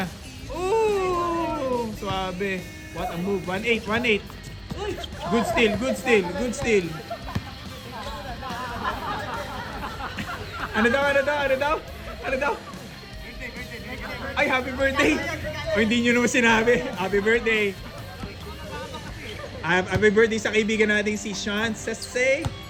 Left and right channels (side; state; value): both; identical; correlation 1.00